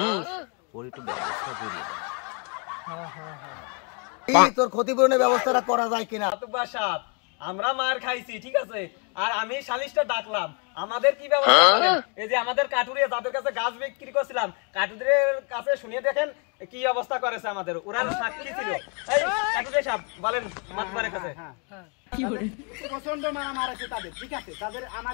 ওর একটু ব্যবস্থা করিয়ে দেন। তোর ক্ষতিপূরণের ব্যবস্থাটা করা যায় কিনা? মাতুব্বর সাহেব, আমরা মার খাইছি, ঠিক আছে? আর আমি সালিশটা ডাকলাম, আমাদের কি ব্যবস্থা করেন? এই যে আমাদের কাটুরিয়া যাদের কাছে গাছ বিক্রি করছিলাম, কাটুরিয়ার কাছে শুনিয়ে দেখেন কি অবস্থা করেছে আমাদের। ওরা সাক্ষী ছিল। এই কাটুরিয়া সাহেব বলেন মাতুব্বরের কাছে। প্রচন্ড মারা মারেছে তাদের, ঠিক আছে? তাদের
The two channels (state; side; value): quieter; right; 35.5 dB